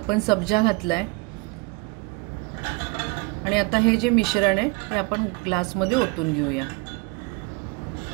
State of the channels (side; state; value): left; quieter; 27.1 dB